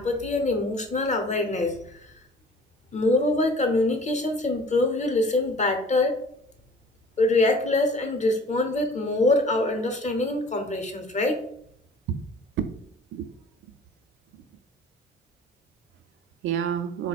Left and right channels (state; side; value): normal; both; correlation 0.47